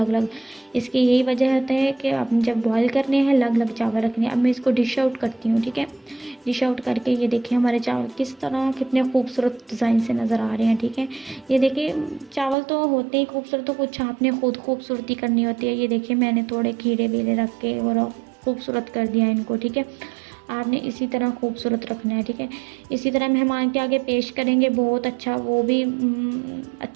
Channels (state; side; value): drops out; left; at 12.6 s